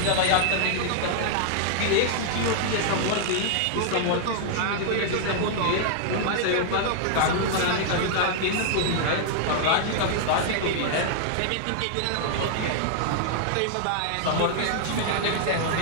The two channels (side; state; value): both; different; correlation -0.01